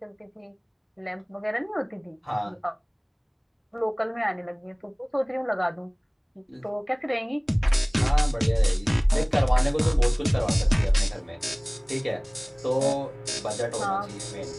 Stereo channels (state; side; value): identical; both; correlation 1.00